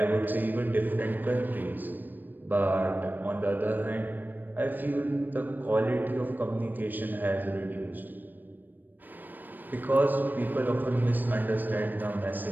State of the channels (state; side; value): late; left; 0.090 ms